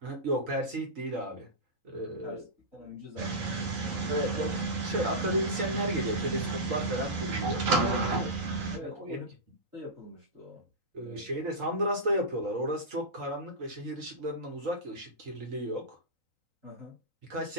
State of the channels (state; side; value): late; left; 3.9 ms